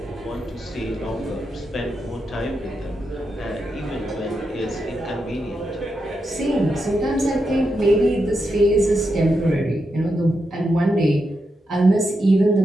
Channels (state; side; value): normal; both; correlation 0.85